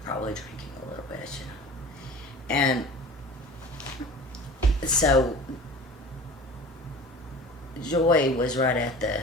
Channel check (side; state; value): both; normal; correlation 0.39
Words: probably drinking a little bit, And so Joy was right at the